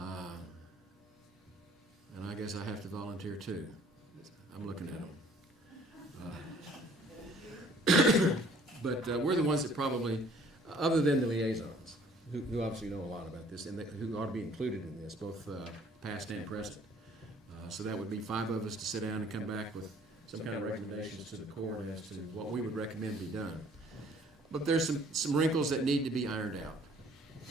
I guess I have to volunteer too. I'm looking at them. But we're the ones that probably, other than the liaisons, who obviously know a lot about this, and who ought to be included in this, both past and present. So that would be 5 of us to sit down and come back with some kind of recommendations to the court as to what we would recommend be done. But there's some wrinkles that need to be ironed out.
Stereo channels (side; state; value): both; normal; correlation 0.56